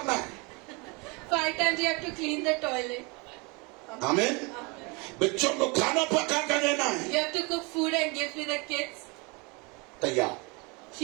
है। 5 times you have to clean the toilet. आमीन। बच्चों को खाना पका कर देना है। You have to cook food and give to the kids. तैयार,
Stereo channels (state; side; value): quieter; left; 29.2 dB